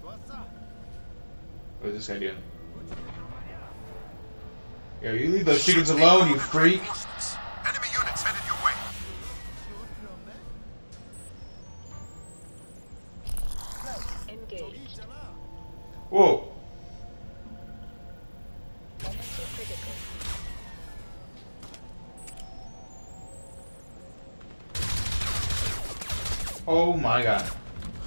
What is this guy doing? Yo, you leave those chickens alone, you freak! Reinforcements. Enemy units headed your way. Engaged. Whoa! Energy critical. Oh my god.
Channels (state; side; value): inverted; both; correlation -1.00